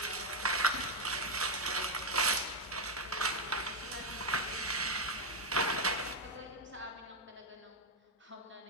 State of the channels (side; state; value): both; normal; correlation 0.04